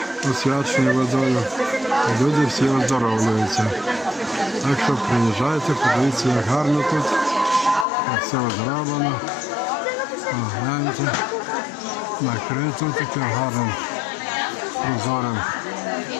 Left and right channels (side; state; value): right; drops out; at 7.9 s